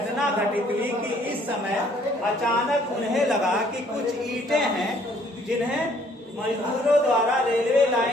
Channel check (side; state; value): both; normal; correlation 0.62